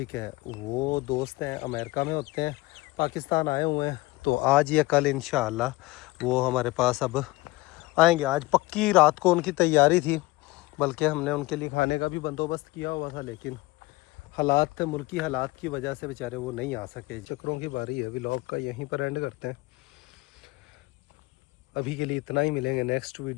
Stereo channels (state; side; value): quieter; right; 21.4 dB